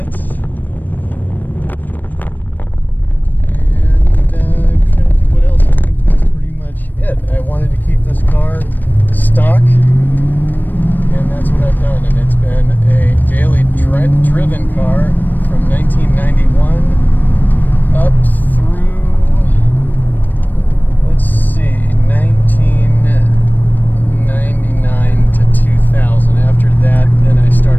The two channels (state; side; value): late; right; 0.089 ms